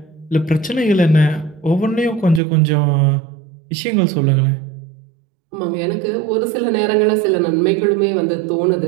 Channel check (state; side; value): drops out; left; at 2.4 s